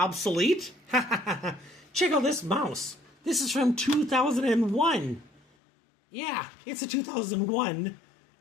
Check out this mouse. This is from 2001. Yeah, it's a 2001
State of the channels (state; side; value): drops out; right; at 5.5 s